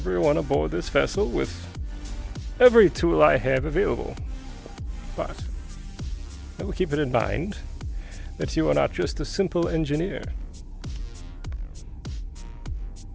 aboard this vessel with every tool I have available. But I will keep it in mind that you are not just a simple engineer.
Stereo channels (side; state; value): both; identical; correlation 1.00